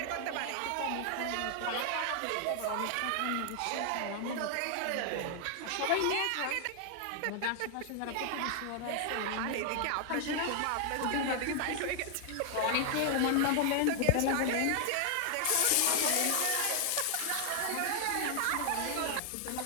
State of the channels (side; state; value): both; different; correlation 0.00